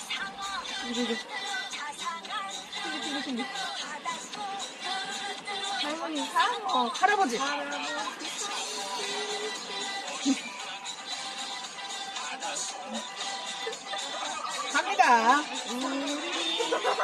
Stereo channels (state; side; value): identical; both; correlation 1.00